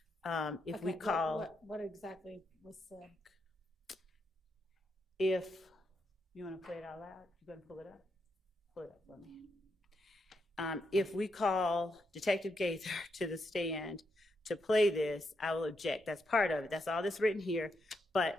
if we call... What exactly was said? If you want to play it out loud, you going to pull it up? Pull it up for me. If we call Detective Gaither to the stand to play this, I will object. That's part of it. That's all that's written here. But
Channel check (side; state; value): both; normal; correlation 0.81